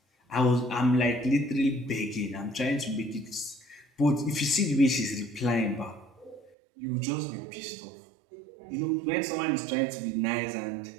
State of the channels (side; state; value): left; drops out; at 6.5 s